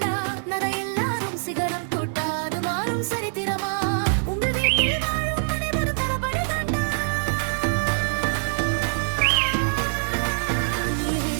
சிகரம் தொட்டாது மாறும் சரித்திரமா, உங்க வீட்டில் வாழும் அனைவரும் தளபதி தாண்டா. நீ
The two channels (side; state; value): left; silent; digital silence